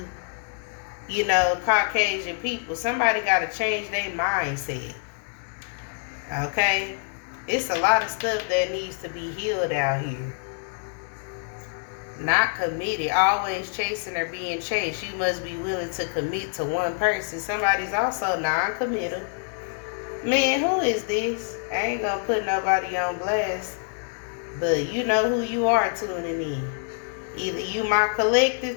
you know, Caucasian people. Somebody got to change their mindset. Okay? It's a lot of stuff that needs to be healed out here. Not committed. Always chasing or being chased. You must be willing to commit to one person. Somebody's also non-committal. Man, who is this? I ain't gonna put nobody on blast. But you know who you are tuning in. Either you my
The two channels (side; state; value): right; silent; 61 dB below the other